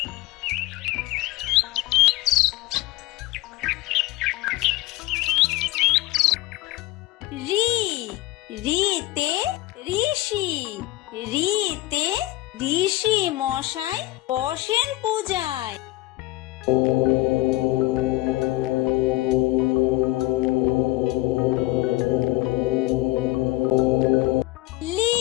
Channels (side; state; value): right; quieter; 18.7 dB